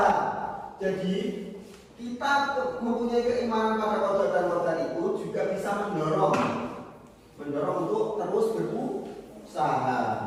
Jadi kita mempunyai keimanan pada qada dan qadar itu juga bisa mendorong untuk terus berusaha.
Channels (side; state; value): both; identical; correlation 1.00